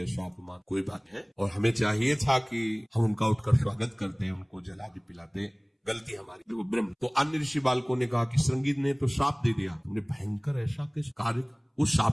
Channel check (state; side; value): identical; both; correlation 1.00